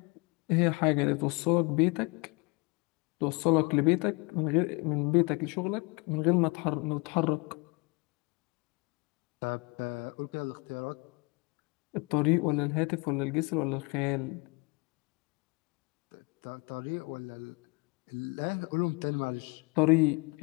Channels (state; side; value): quieter; right; 29.5 dB